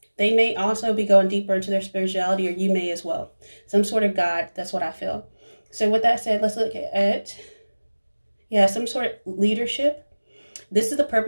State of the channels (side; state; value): both; inverted; correlation -1.00